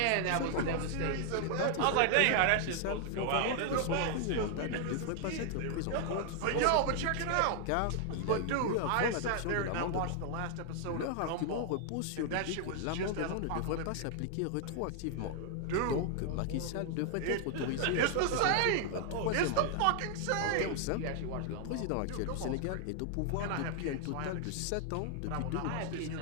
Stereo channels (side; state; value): both; different; correlation 0.00